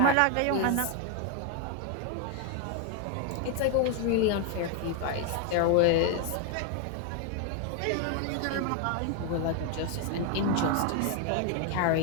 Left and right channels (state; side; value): different; both; correlation 0.01